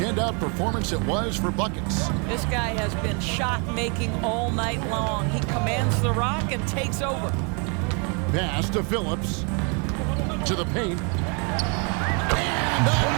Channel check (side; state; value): left; quieter; 35.5 dB